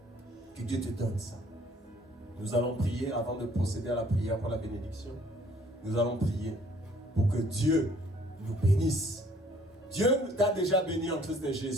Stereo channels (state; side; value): normal; both; correlation 0.59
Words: Que Dieu te donne ça. Nous allons prier avant de procéder à la prière pour la bénédiction. Nous allons prier pour que Dieu nous bénisse. Dieu t'a déjà béni en Christ